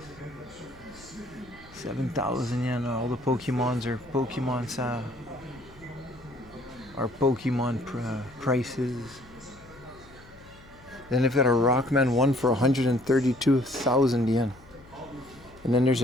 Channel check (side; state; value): left; noise; hum, 23 dB below the sound